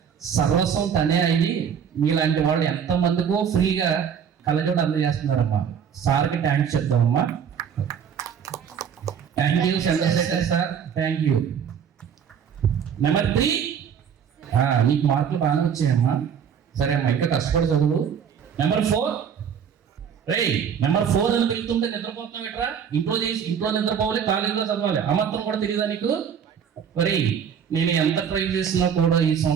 సర్వస్వం తనే అయ్యి మీలాంటి వాళ్ళు ఎంతమందికో ఫ్రీగా కళ్ళజోడు అందజేస్తున్నారమ్మా. సార్కి థ్యాంక్స్ చెప్తామమ్మా. Thank you Chandrashekar sir, thank you. Number 3. నీకు మార్కులు బాగానే వచ్చాయమ్మా. సరే అమ్మా, ఇంకా కష్టపడి చదువు. నెంబర్ 4. నెంబర్ 4 అని వెళ్తుంటే నిద్రపోతున్నావు ఎట్రా? ఇంట్లో నిద్రపోవాలి, కాలేజీలో చదవాలి. ఆ మాత్రం కూడా తెలియదా నీకు? మరి నేను ఎంత ట్రై చేసినా కూడా ఈ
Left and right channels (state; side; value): quieter; left; 7.8 dB